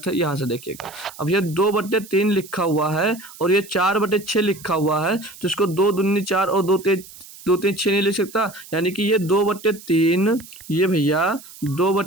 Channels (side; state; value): right; noise; hiss, 18 dB below the sound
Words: है, यहाँ से देखिएगा। अब ये 2/3 लिखा हुआ है और ये 4/6 लिखा हुआ है, तो इसको 2 दूनी 4 और 2 3 6 नहीं लिख सकता, यानी कि ये 2/3, ये भैया